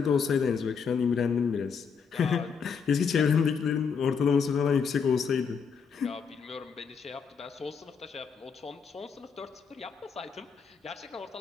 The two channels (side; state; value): right; quieter; 6.1 dB